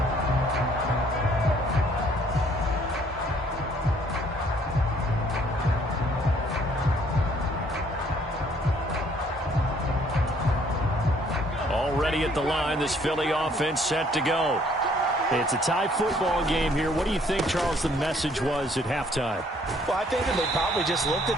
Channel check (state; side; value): normal; both; correlation 0.62